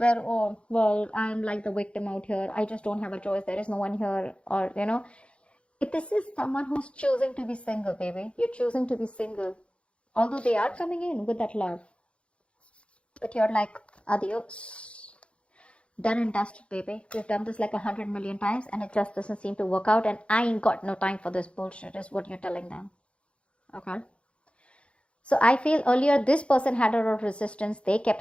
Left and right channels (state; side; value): late; right; 0.059 ms